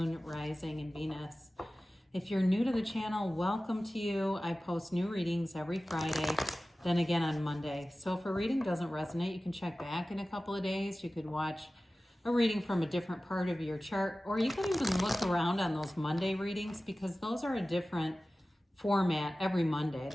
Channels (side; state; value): both; normal; correlation 0.96